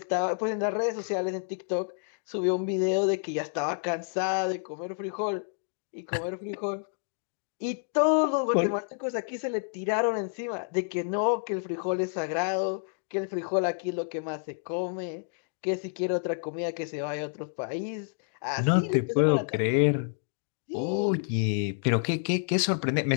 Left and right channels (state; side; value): silent; right; digital silence